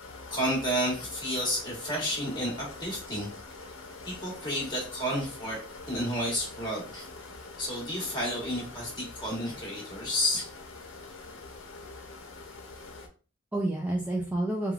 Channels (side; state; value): both; normal; correlation 0.36